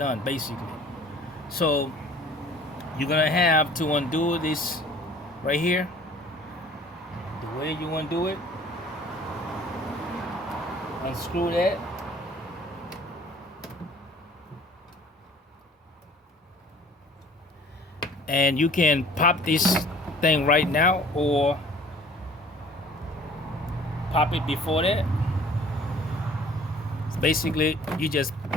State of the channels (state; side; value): normal; both; correlation 0.51